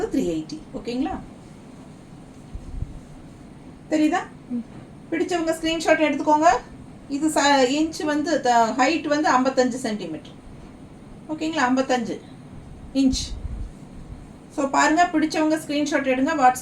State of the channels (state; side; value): identical; both; correlation 1.00